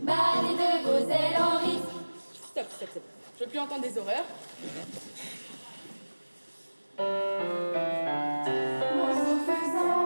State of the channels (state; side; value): inverted; both; correlation -1.00